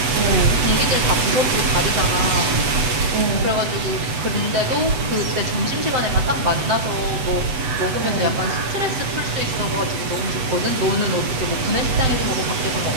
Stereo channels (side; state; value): left; late; 8.2 ms